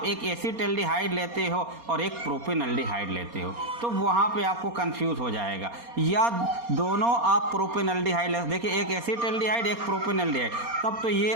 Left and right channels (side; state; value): left; late; 4.3 ms